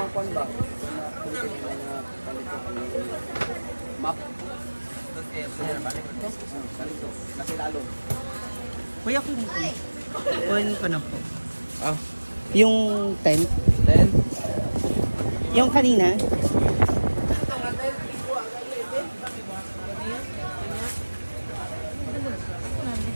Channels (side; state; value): both; inverted; correlation -1.00